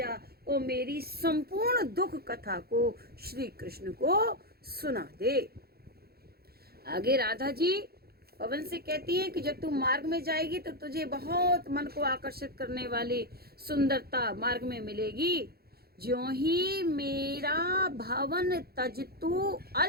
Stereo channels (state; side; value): late; left; 0.45 ms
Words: और मेरी संपूर्ण दुख कथा को श्री कृष्ण को सुना दे। आगे राधा जी पवन से कहती है कि जब तू मार्ग में जाएगी तो तुझे बहुत मन को आकर्षित करने वाली सुंदरता मार्ग में मिलेगी। ज्यों ही मेरा भवन तज तू